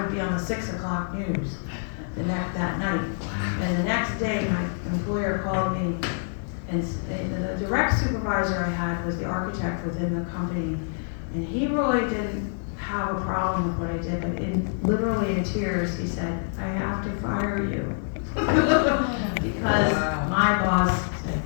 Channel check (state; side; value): silent; right; digital silence